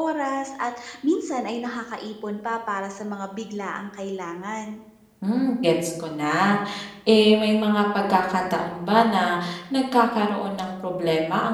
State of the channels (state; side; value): identical; both; correlation 1.00